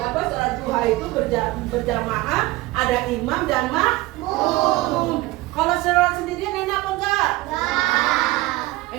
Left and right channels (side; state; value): left; quieter; 19.2 dB